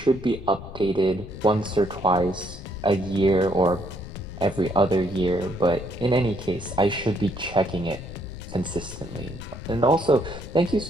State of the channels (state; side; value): noise; left; rumble, 13 dB below the sound